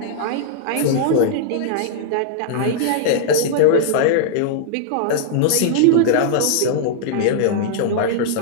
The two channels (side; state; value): both; different; correlation -0.01